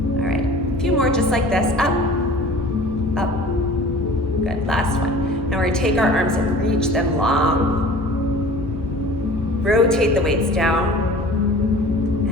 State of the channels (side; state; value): both; normal; correlation 0.44